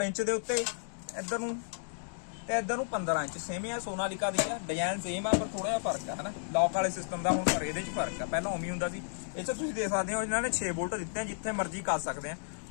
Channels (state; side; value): silent; right; digital silence